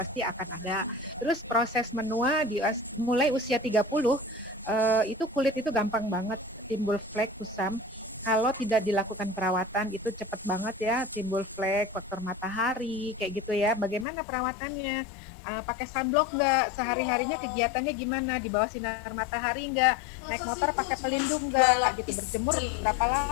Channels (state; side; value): drops out; right; at 14.1 s